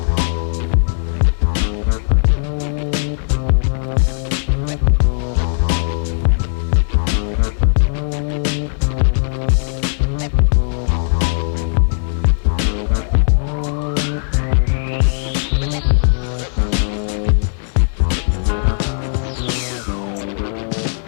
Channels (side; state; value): right; silent; digital silence